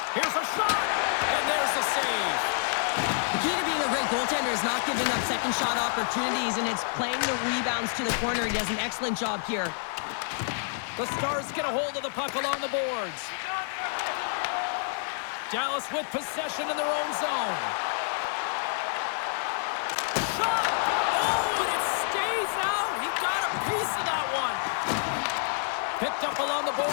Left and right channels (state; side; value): silent; right; digital silence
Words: Here's a shot, and there's the save. The key to being a great goaltender is not giving up second shot opportunities, and it's playing the rebounds to the corner. He does an excellent job here. The Stars get a hold of the puck along the boards. Dallas with possession in their own zone. Shot! Oh, and it stays out. He got a piece of that one. Picked up along the